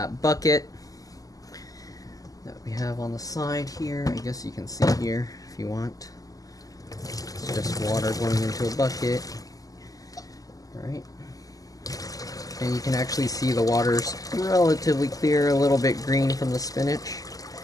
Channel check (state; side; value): late; right; 0.17 ms